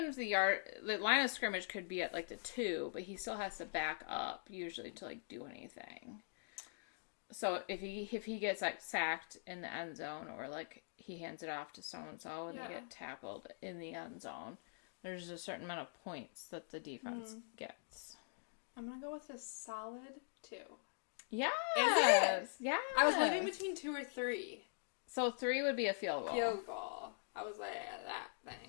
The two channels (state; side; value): silent; right; digital silence